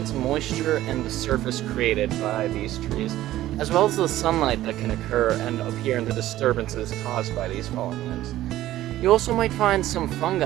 moisture, and the surface created by these trees, as well as the sunlight that can occur and appear in the disturbances caused by these fallen limbs. You also might find some fungi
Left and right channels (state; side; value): quieter; left; 14.5 dB